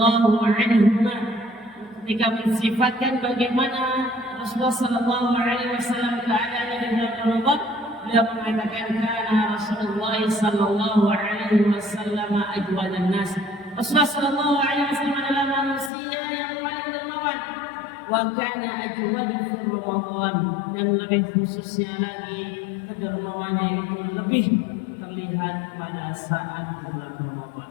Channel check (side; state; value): right; drops out; at 15.9 s